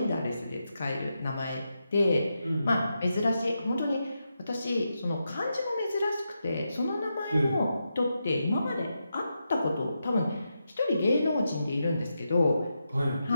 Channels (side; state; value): both; inverted; correlation -0.86